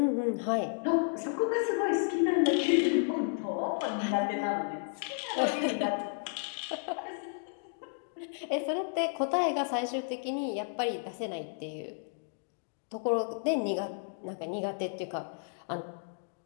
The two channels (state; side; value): silent; right; digital silence